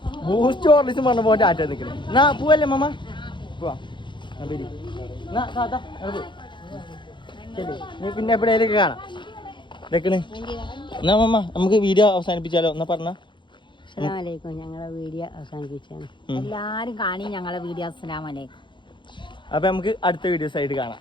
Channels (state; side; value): late; right; 0.23 ms